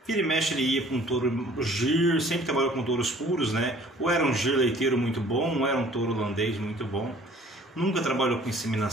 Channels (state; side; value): normal; both; correlation 0.53